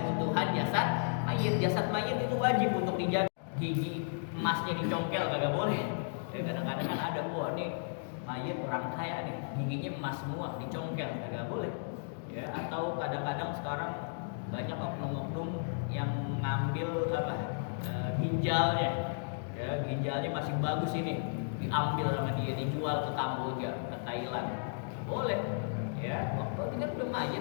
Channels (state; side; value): silent; right; digital silence